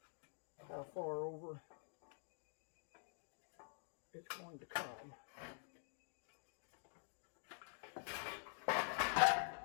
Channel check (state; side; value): silent; right; digital silence